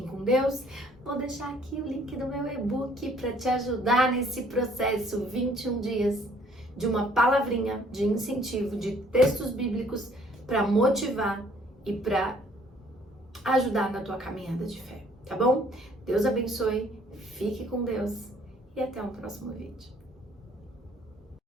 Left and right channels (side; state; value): both; normal; correlation 0.61